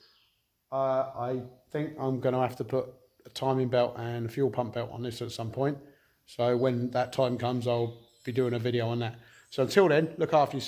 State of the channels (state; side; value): identical; both; correlation 1.00